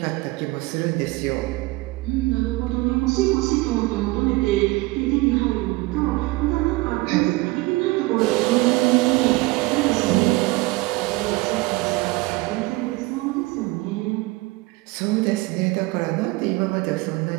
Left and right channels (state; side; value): quieter; left; 21.8 dB